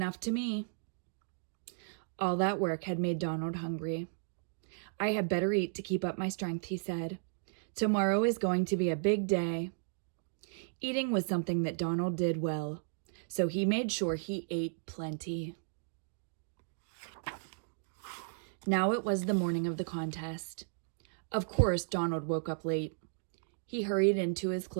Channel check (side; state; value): left; silent; digital silence